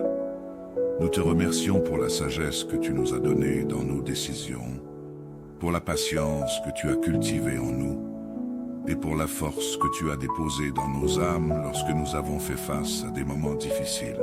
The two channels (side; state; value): both; identical; correlation 1.00